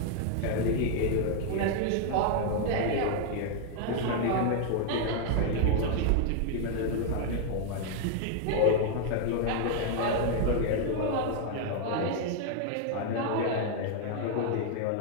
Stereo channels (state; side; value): different; both; correlation 0.00